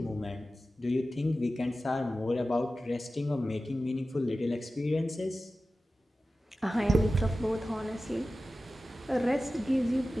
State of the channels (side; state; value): both; normal; correlation 0.95